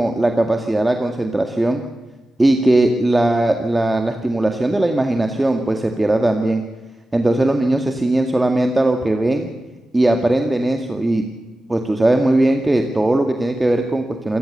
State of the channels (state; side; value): normal; both; correlation 0.94